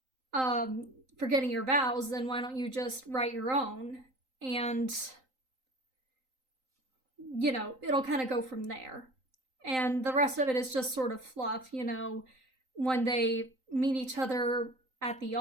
forgetting your vows, then why don't you just write your own? And, it'll kind of go from there. And the rest of it is just sort of fluff, when they meet each other at the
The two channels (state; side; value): late; left; 3.9 ms